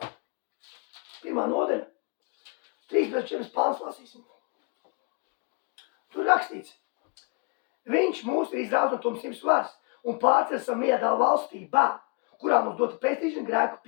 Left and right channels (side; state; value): right; quieter; 32.1 dB